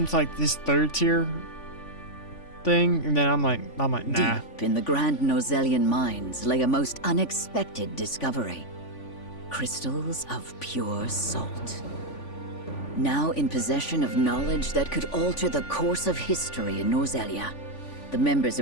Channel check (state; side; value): late; right; 3.5 ms